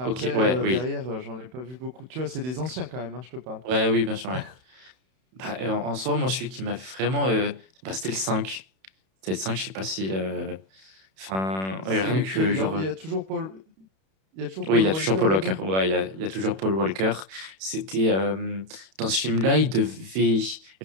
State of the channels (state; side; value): late; left; 31 ms